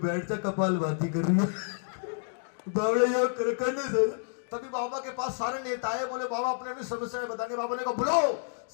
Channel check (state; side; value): silent; right; digital silence